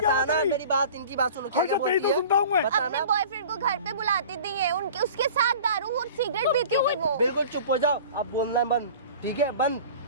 बताना, है मेरी बात इनकी बात सुनो क्या हर क्या जगह बोलती तो है सुनता हूँ मैं। अपने बताना। बॉयफ्रेंड को घर पे बुलाती थी है, उनके उसके साथ दारू और सिगरेट पीती थी वो। बिल्कुल चुप हो जाओ, आप बोलना बंद, ठीक है, बंद,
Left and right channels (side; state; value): both; inverted; correlation -0.41